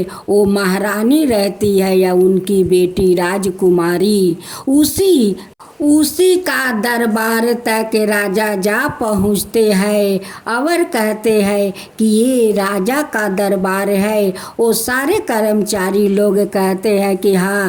वो महारानी रहती है या उनकी बेटी राजकुमारी, उसी का दरबार तक राजा जा पहुँचते हैं और कहते हैं कि ये राजा का दरबार है। वो सारे कर्मचारी लोग कहते हैं कि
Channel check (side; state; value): both; identical; correlation 1.00